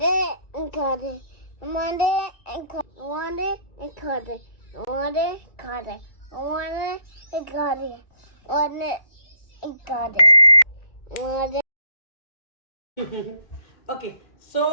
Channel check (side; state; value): right; late; 2.2 ms